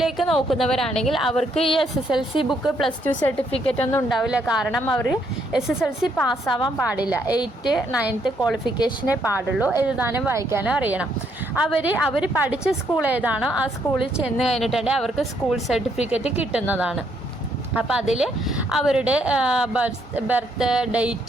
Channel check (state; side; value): normal; both; correlation 0.72